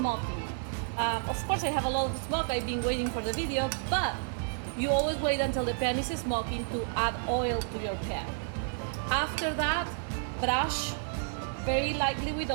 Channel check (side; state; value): left; silent; digital silence